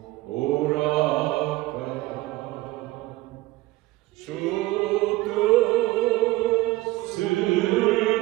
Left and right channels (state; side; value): quieter; left; 18.9 dB